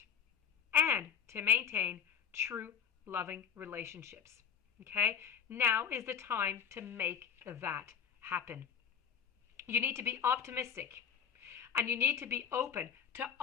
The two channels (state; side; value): quieter; right; 7.6 dB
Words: and to maintain true loving relationships. Okay, now is the time to make that happen. You need to be optimistic, and you need to be open to